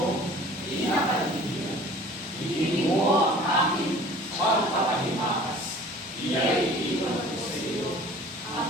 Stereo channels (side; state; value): both; normal; correlation 0.47